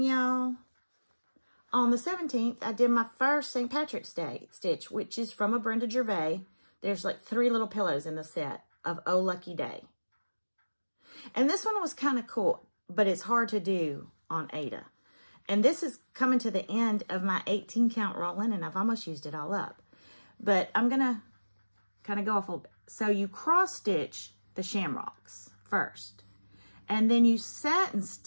y'all. On the 17th, I did my first St. Patrick's Day stitch, which is from a Brenda Gervais. There's like 3 little pillows in the set of Oh Lucky Day. And this one was kind of cool, but it's hard to do on Ada. And this is coming to the end of my 18 count roll-in, and I've almost used it all up. But I'm going to kind of go off a little bit. So you cross stitch the shamrocks first, and then you satin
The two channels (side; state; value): both; inverted; correlation -1.00